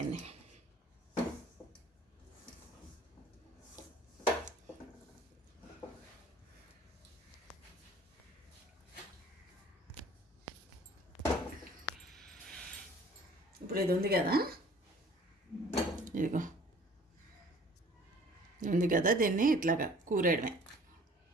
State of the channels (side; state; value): both; normal; correlation 0.51